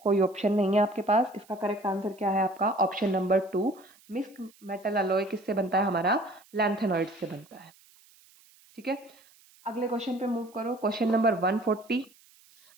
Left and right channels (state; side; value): noise; right; hiss, 28 dB below the sound